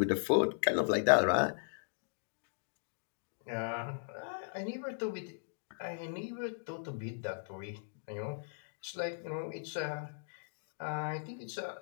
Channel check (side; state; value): right; silent; digital silence